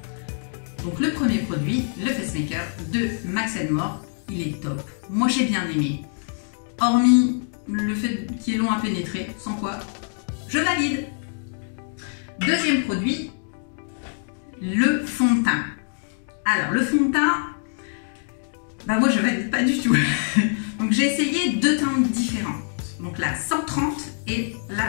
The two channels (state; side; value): silent; right; digital silence